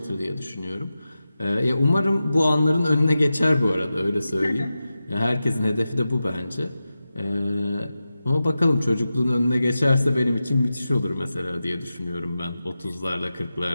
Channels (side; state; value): both; inverted; correlation -0.93